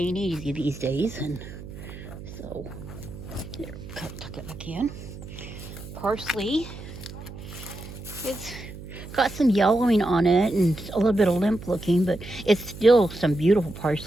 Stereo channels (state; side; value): noise; right; hum, 13 dB below the sound